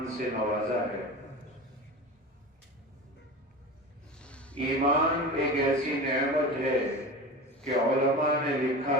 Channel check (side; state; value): both; normal; correlation 0.30